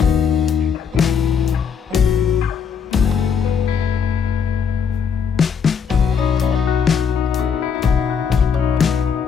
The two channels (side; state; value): right; quieter; 6.7 dB